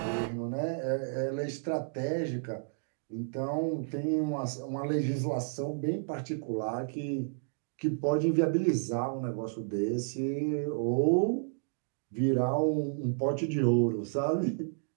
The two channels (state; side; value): silent; left; digital silence